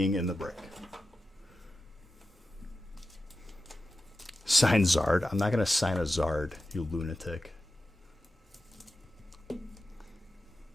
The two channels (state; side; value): normal; both; correlation 0.92